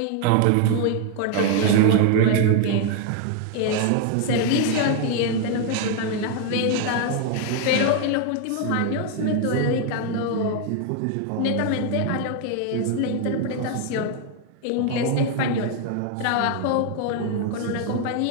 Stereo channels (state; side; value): different; both; correlation 0.01